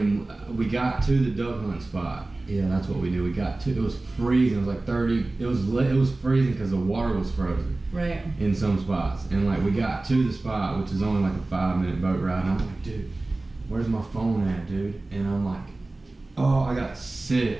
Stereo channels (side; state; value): left; quieter; 3.0 dB